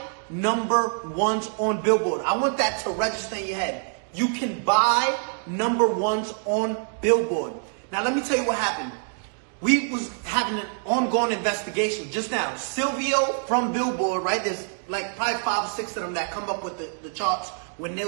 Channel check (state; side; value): silent; left; 61 dB below the other